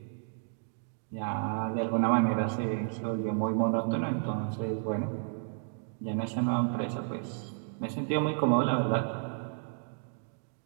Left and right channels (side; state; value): left; silent; digital silence